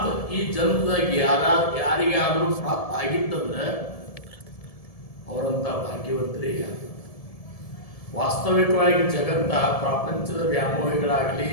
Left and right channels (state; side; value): late; right; 1.7 ms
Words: ಈ ಜನ್ಮದಾಗ ಯಾರಿಗಾದರೂ ಪ್ರಾಪ್ತ ಆಗಿತ್ತಂದ್ರೆ ಅವರಂಥ ಭಾಗ್ಯವಂತರೇ. ವಾಸ್ತವಿಕವಾಗಿ ಜಗತ್ತ ಪ್ರಪಂಚದ ವ್ಯಾಮೋಹಿಗಳಾಗಲಿ,